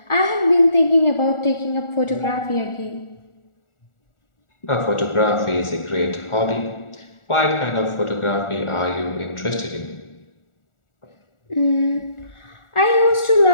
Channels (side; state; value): right; late; 1.4 ms